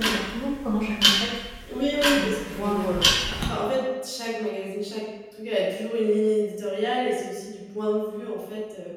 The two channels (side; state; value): both; identical; correlation 1.00